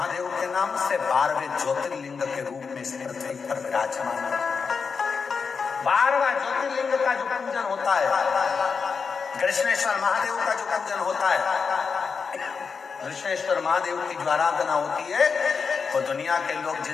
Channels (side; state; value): right; quieter; 5.4 dB